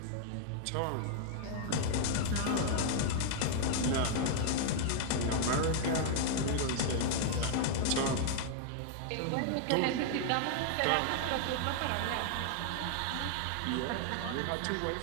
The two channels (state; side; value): different; both; correlation 0.00